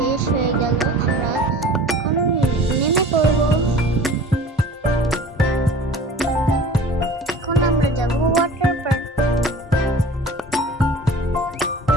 হয়ে গেল। আমরা এখন নেমে পড়ব। এখন আমরা যাব ওয়াটার পার্ক।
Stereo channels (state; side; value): normal; both; correlation 0.42